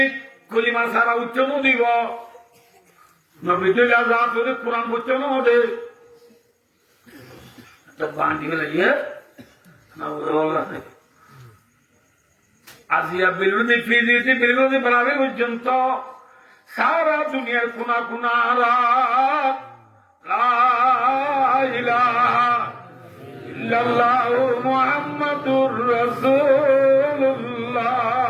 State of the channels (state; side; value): identical; both; correlation 1.00